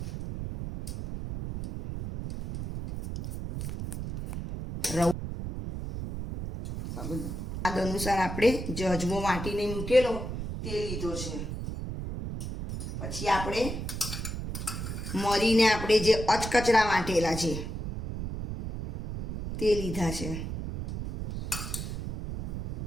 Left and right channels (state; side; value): noise; right; rumble, 5 dB below the sound